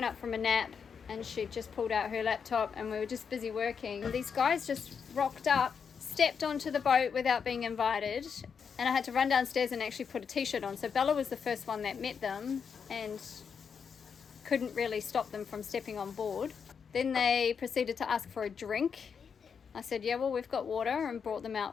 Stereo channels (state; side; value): quieter; right; 6.5 dB